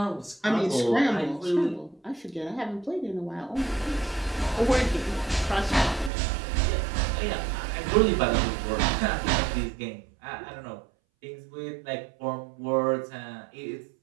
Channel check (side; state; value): left; drops out; at 6.1 s